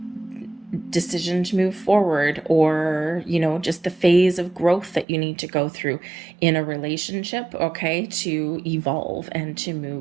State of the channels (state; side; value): drops out; left; at 5.1 s